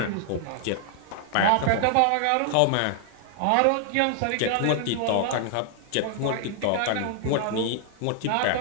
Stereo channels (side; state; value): both; different; correlation 0.00